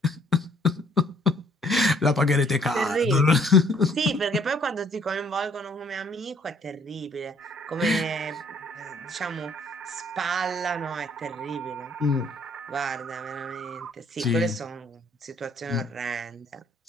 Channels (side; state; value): both; normal; correlation 0.62